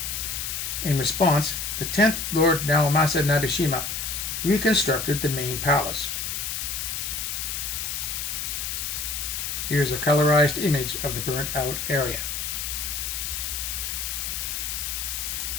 In response, the 10th Lord Naomasa Nabeshima reconstructed the main palace. Here's a colorized image of the burnt out area.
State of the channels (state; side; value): noise; left; hiss, 3 dB below the sound